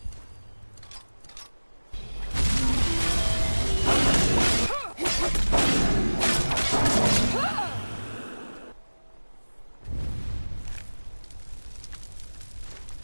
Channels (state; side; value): inverted; both; correlation -1.00